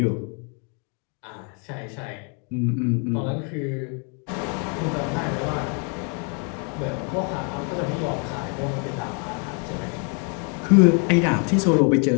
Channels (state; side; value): quieter; right; 38.3 dB